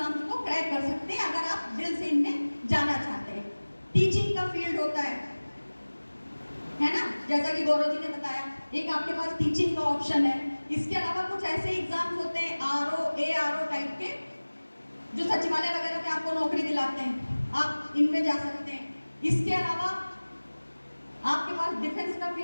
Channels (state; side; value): inverted; both; correlation -1.00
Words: को क्रैक कर सकते हैं अगर आप दिल से इनमें जाना चाहते हैं। टीचिंग का फील्ड होता है ना, जैसा कि गौरव जी ने बताया, एक आपके पास टीचिंग का ऑप्शन है। इसके अलावा कुछ ऐसे एग्जाम्स होते हैं RO, ARO टाइप के, जो सचिवालय वगैरह में आपको नौकरी दिलाते हैं, आप इनमें जा सकते हैं। इसके अलावा आपके पास डिफेंस का